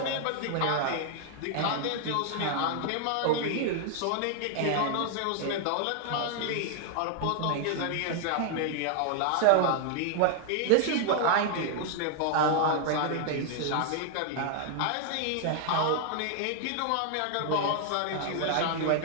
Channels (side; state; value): both; different; correlation 0.00